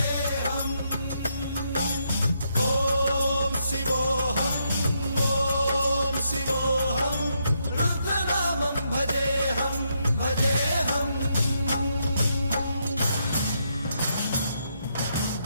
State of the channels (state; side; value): inverted; both; correlation -0.78